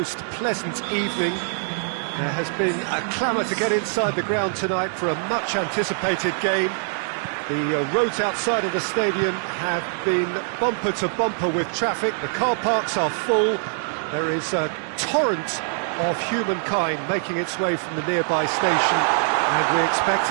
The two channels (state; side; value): silent; left; 63 dB below the other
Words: pleasant evening. There has been a clamour to get inside the ground tonight for a much anticipated game. The roads outside of the stadium have been bumper to bumper with traffic. The car parks are full. There is a torrent of humankind making its way from the nearby station, and we expect